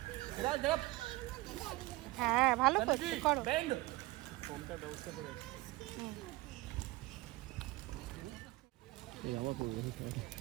হ্যাঁ ভালো করছো, করো। ফোনটা ব্যবস্থা করে এই আমার পড়বে,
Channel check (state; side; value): quieter; left; 20.5 dB